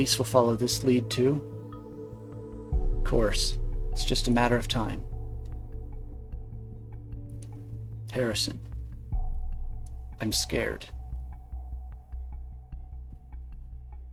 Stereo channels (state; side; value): identical; both; correlation 1.00